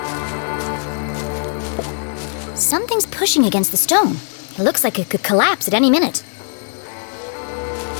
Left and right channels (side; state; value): right; silent; 66 dB below the other